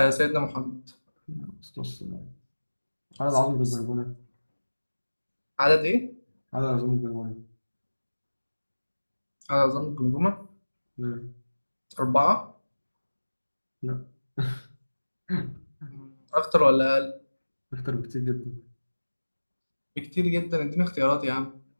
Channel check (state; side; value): inverted; both; correlation -1.00